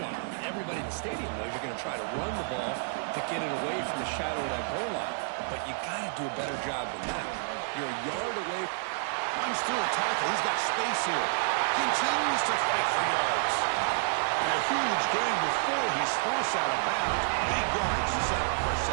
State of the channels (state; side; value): silent; left; digital silence